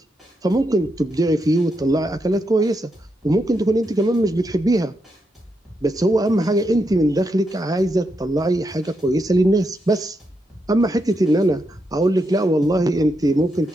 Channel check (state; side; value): normal; both; correlation 0.82